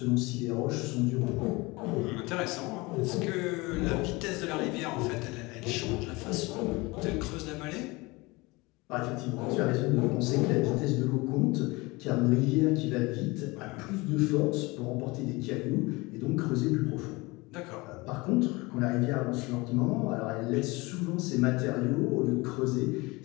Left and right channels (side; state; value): right; quieter; 23.7 dB